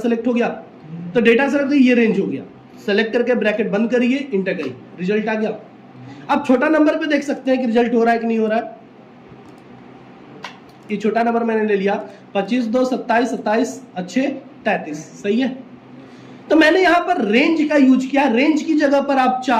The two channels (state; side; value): identical; both; correlation 1.00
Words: हो गया, तो डेटा सेलेक्ट ये रेंज हो गया। सेलेक्ट करके ब्रैकेट बंद करिए, इंटर करिए, रिजल्ट आ गया। अब छोटा नंबर पे देख सकते हैं कि रिजल्ट हो रहा है कि नहीं हो रहा है। ये छोटा नंबर मैंने ले लिया 25, 2, 27, 27 अच्छे 33, सही है। तो मैंने यहां पर रेंज का यूज किया। रेंज की जगह पर आप